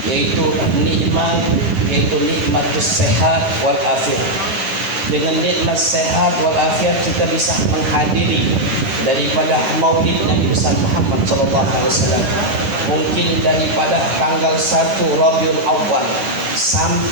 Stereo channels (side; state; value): left; late; 10 ms